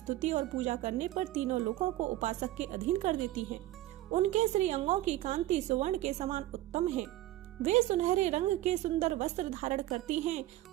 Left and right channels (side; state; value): left; quieter; 15.5 dB